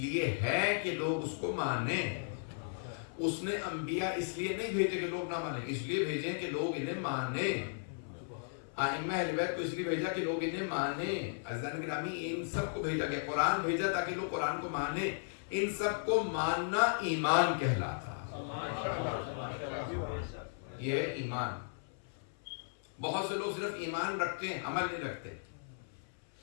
ہے کہ لوگ اس کو مانیں. اس نے انبیاء اس لیے نہیں بھیجے کہ لوگ نہ مانیں، اس لیے بھیجے کہ لوگ انہیں مانیں. ائمہ اہل بیت کو اس لیے بھیجا کہ لوگ انہیں مانیں. عزیزان گرامی، ان سب کو بھیجا گیا، قرآن بھیجا تاکہ لوگ قرآن کو مانیں. ان سب کو ماننا ایمان کہلاتا. یہ ایمان. بہت سے لوگ صرف ایمان رکھتے ہیں، عمل نہیں رکھتے.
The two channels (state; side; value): silent; right; 54 dB below the other